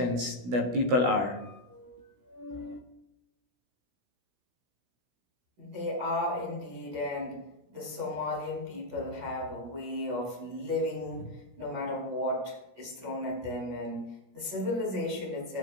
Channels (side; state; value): left; late; 16 ms